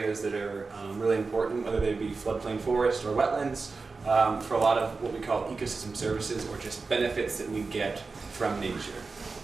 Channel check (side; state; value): left; quieter; 4.2 dB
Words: that are really important, whether they be floodplain forest or wetlands, for a lot of what we call ecosystem services or just benefits that we get from nature.